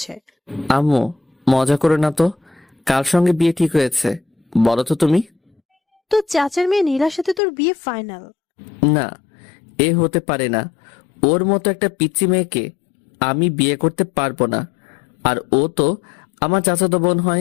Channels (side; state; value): right; drops out; at 7.4 s